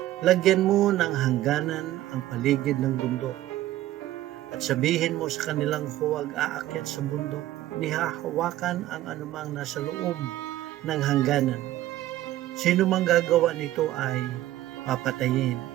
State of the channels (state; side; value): quieter; left; 14.6 dB